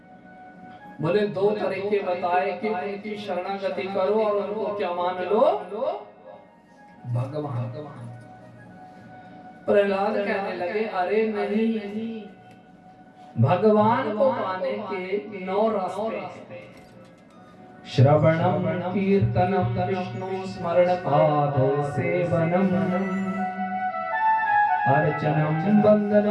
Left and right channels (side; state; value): both; identical; correlation 1.00